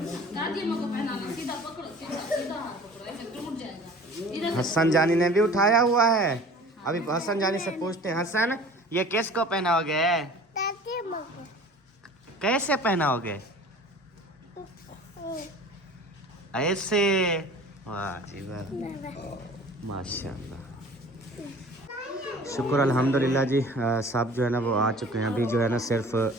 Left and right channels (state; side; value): normal; both; correlation 0.44